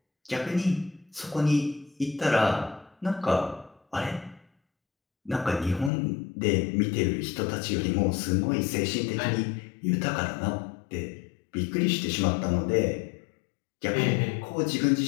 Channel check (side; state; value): right; drops out; at 5.9 s